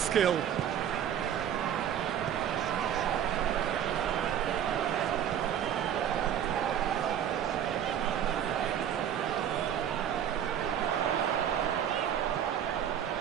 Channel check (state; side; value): quieter; left; 9.6 dB